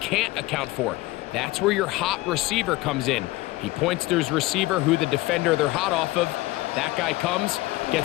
account for. That's where your hot receiver comes in. He points to his receiver who the defender they're hot off of. That guy comes,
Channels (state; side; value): quieter; right; 19.5 dB